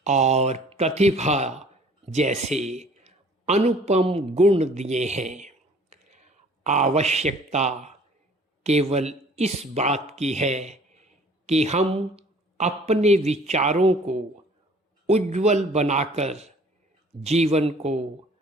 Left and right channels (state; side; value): normal; both; correlation 0.53